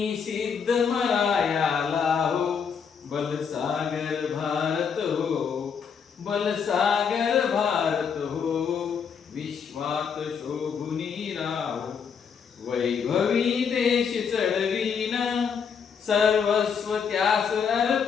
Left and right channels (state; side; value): quieter; right; 6.6 dB